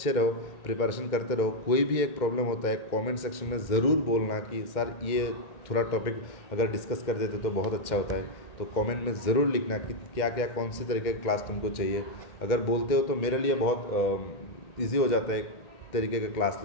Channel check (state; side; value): late; right; 2.1 ms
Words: रहो, प्रिपरेशन करते रहो। कोई भी एक प्रॉब्लम होता है कमेंट सेक्शन में ज़रूर बोलना कि सर ये थोड़ा टॉपिक अगर डिस्कस कर देते तो बहुत अच्छा होता है। तो कमेंट में ज़रूर लिखना कि क्या क्या कौन सी तरीके की क्लास तुमको चाहिए। अगर बोलते हो तो मेरे लिए बहुत ईजी हो जाता है एक तरीके का क्लास